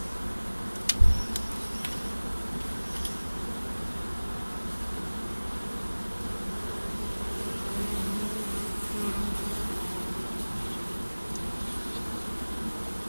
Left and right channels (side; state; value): both; inverted; correlation -1.00